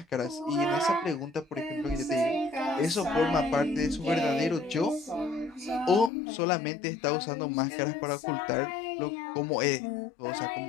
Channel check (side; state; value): right; drops out; at 6.1 s